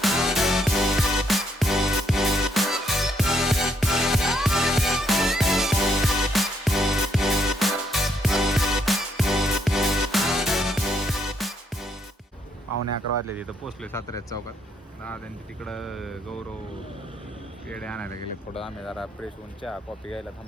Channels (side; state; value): both; normal; correlation 0.72